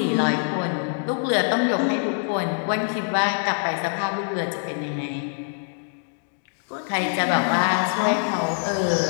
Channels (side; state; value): right; silent; digital silence